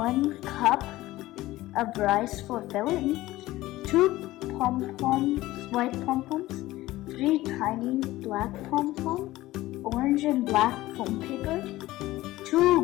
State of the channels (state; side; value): quieter; right; 17.2 dB